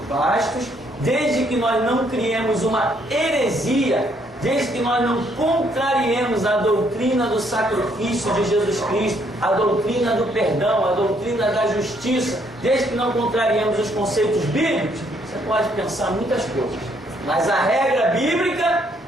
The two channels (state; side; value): normal; both; correlation 0.69